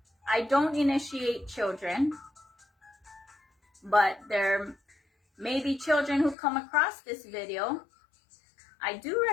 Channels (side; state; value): right; drops out; at 6.4 s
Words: I don't initiate children, but there may be children who come across this video. I do